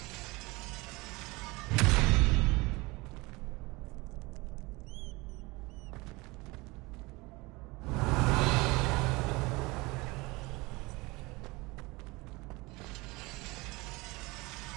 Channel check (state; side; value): quieter; left; 23.7 dB